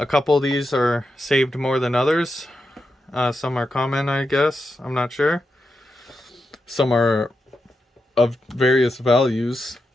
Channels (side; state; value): both; normal; correlation 0.87